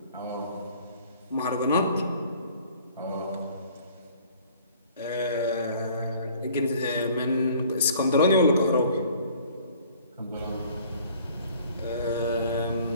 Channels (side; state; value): both; inverted; correlation -0.53